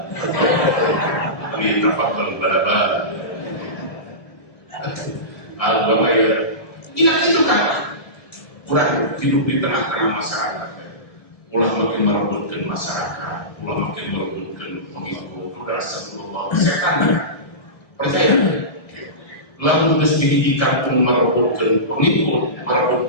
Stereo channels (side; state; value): right; late; 1.6 ms